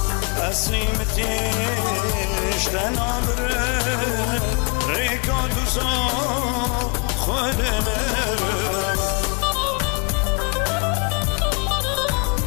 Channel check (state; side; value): quieter; right; 33.5 dB